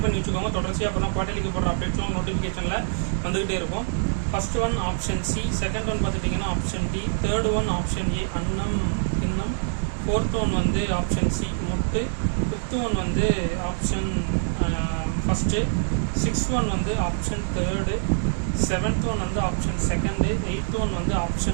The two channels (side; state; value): left; silent; digital silence